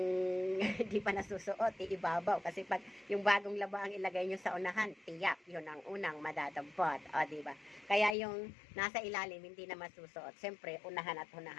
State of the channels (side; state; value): right; drops out; at 8.2 s